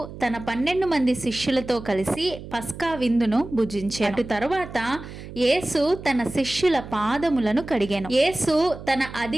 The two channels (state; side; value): noise; right; hum, 13 dB below the sound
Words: తన 12 మంది శిష్యులతో కలిసి పస్కా విందును భుజించాడు. అటు తరువాత యేసు తన శిష్యుల పాదములను కడిగాను. యేసు తన